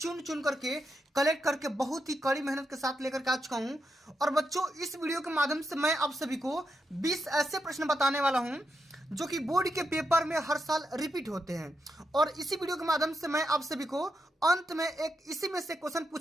करके कलेक्ट करके बहुत ही कड़ी मेहनत के साथ लेकर के आ चुका हूं। और बच्चों, इस वीडियो के माध्यम से मैं आप सभी को 20 ऐसे प्रश्न बताने वाला हूं जो कि बोर्ड के पेपर में हर साल रिपीट होते हैं। और इसी वीडियो के माध्यम से मैं आप सभी को अंत में एक इसी में से क्वेश्चन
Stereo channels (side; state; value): both; normal; correlation 0.84